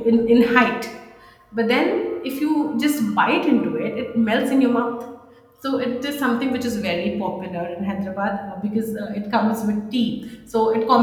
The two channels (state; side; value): identical; both; correlation 1.00